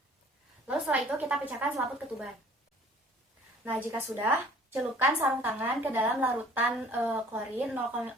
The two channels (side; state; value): both; normal; correlation 0.52